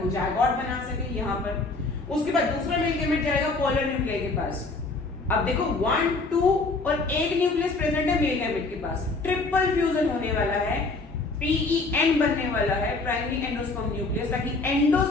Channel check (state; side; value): quieter; right; 3.6 dB